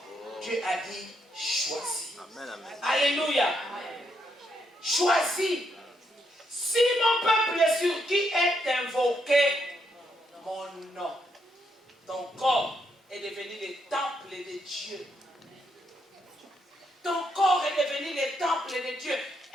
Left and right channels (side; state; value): both; normal; correlation 0.78